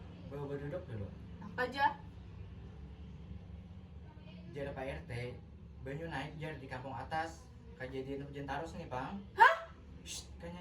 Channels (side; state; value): both; identical; correlation 1.00